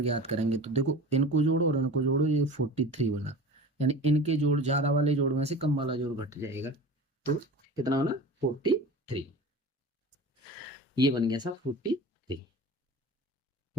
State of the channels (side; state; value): both; normal; correlation 0.35